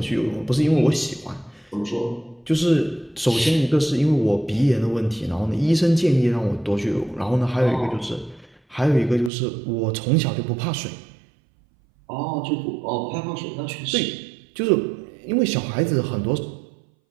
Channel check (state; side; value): drops out; left; at 9.3 s